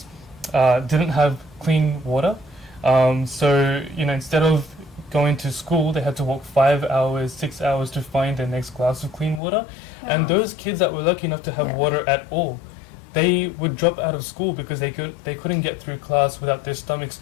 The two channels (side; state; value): right; drops out; at 9.4 s